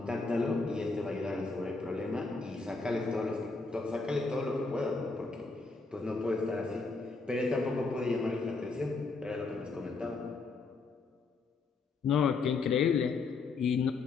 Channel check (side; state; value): right; quieter; 4.1 dB